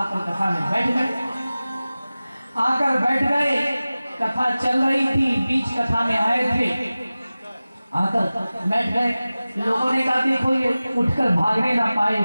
कथा में बैठ गए। आकर बैठ गए, कथा चल रही थी, बीच कथा में आए थे, आकर बैठ गए। लोगों ने कहा देखो ये उठकर भागने ना पाए,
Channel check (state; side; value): inverted; both; correlation -0.97